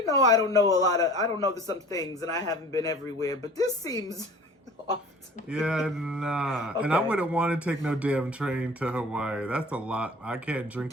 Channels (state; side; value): normal; both; correlation 0.45